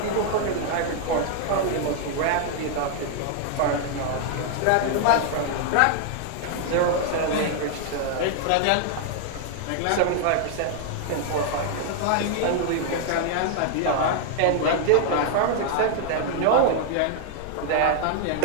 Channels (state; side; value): different; both; correlation 0.00